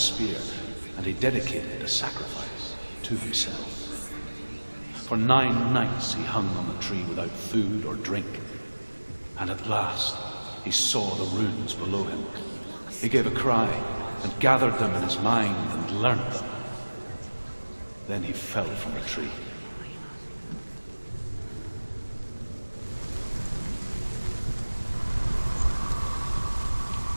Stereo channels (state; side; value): inverted; both; correlation -1.00